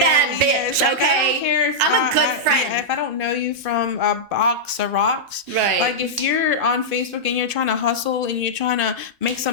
bitch, okay? I don't care if I'm a good friend. If I don't know you from a box of rocks. Right. Like, if you're on Facebook and you're trying to hustle and you're trying to make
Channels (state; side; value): normal; both; correlation -0.09